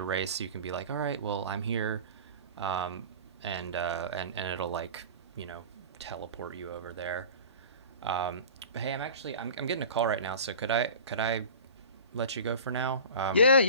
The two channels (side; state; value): both; inverted; correlation -0.38